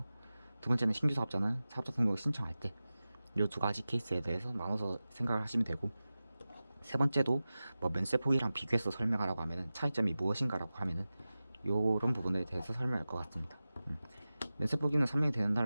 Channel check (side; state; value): both; inverted; correlation -0.95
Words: 두 번째는 신규 사업자는 사업자 등록을 신청할 때, 이 두 가지 케이스에 대해서 나눠서 생각을 하시면 되고, 세 번째도 뭐 면세 포기랑 비교해서 설명하라고 하면은 차이점이 무엇인가라고 하면은 요런 부분에 대해서 설명할 것 같습니다. 면세 포기는 3년이 되는